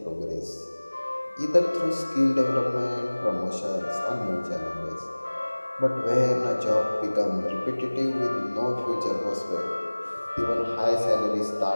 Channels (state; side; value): inverted; both; correlation -1.00